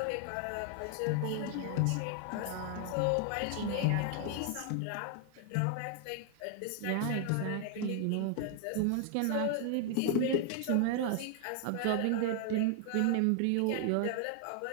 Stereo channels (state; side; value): different; both; correlation 0.00